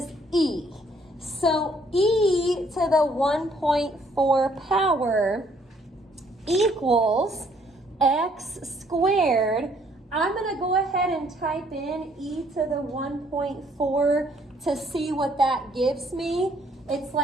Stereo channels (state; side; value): normal; both; correlation 0.65